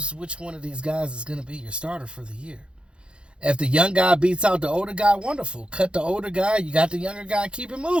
which one of these guys is going to be your starter for the year. If the young guy beats out the older guy, wonderful. Cut the older guy, you got the younger guy, keep it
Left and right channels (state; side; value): late; left; 0.056 ms